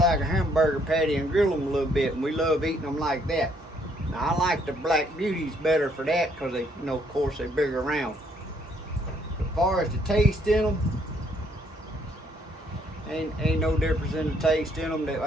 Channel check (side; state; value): both; normal; correlation 0.68